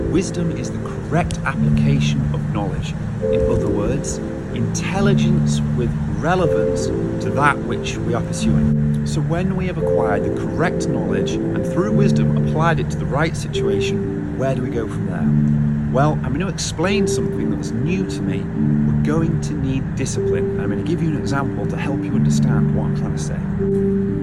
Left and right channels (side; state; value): both; identical; correlation 1.00